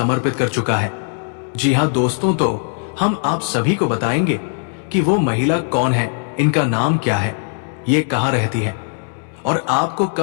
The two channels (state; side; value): silent; right; 61 dB below the other